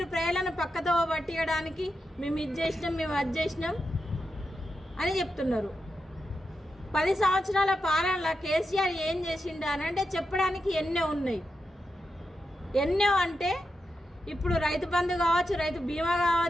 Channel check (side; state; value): both; normal; correlation 0.88